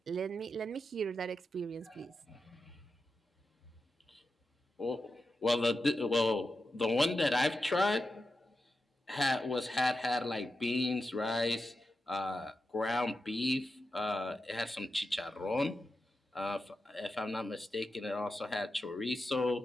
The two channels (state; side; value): normal; both; correlation 0.89